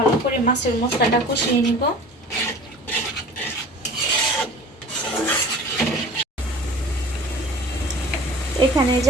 করে মাছের মশলাটা কষিয়ে নিব। এখানে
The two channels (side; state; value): both; normal; correlation 0.42